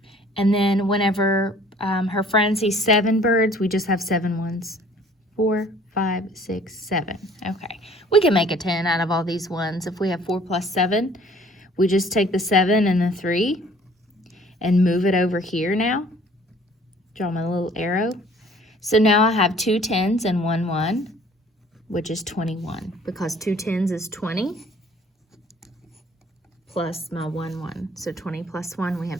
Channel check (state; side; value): normal; both; correlation 0.54